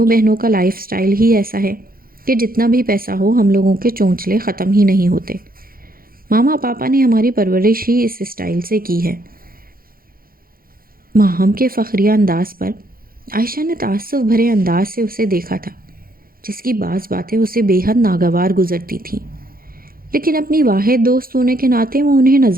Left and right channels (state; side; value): late; left; 0.42 ms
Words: بہنوں کا لائف سٹائل ہی ایسا ہے کہ جتنا بھی پیسہ ہو ہم لوگوں کے چونچلے ختم ہی نہیں ہوتے۔ ماما پاپا نے ہماری پرورش ہی اس سٹائل سے کی ہے۔ ماہم کے فخریہ انداز پر عائشہ نے تعصب بھرے انداز سے اسے دیکھا تھا، جس کی بعض باتیں اسے بے حد ناگوار گزرتی تھیں، لیکن اپنی واحد دوست ہونے کے ناطے وہ انہیں